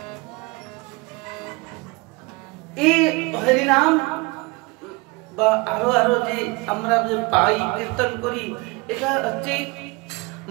এই হরিনাম বা আরো আরো যে আমরা যে পাই কীর্তন করি, এটা হচ্ছে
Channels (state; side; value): quieter; left; 25.6 dB